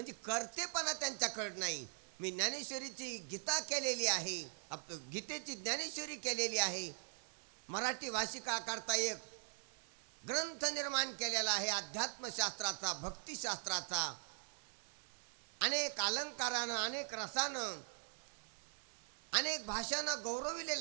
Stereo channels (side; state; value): left; silent; 50 dB below the other